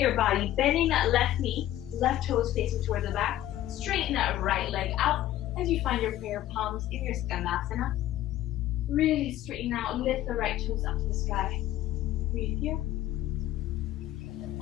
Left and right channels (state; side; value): quieter; right; 13.6 dB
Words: your body, bending that left knee, left toes facing towards the back. Straighten that right leg out as you find your prayer palms in your Skandasana. Really straighten out, lift the right toes up to the sky. Breathe here.